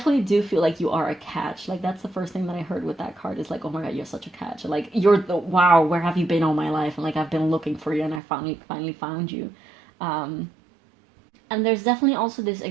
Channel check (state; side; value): drops out; left; at 8.2 s